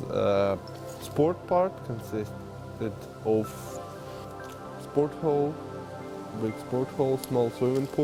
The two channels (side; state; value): both; identical; correlation 1.00